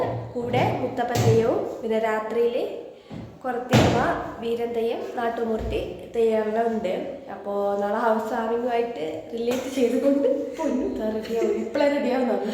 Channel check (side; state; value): both; identical; correlation 1.00